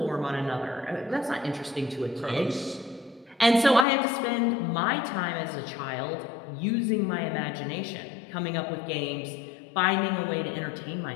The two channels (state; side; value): drops out; right; at 3.9 s